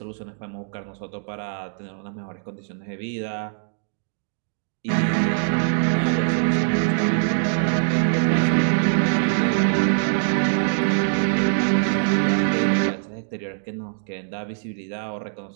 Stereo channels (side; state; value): left; silent; digital silence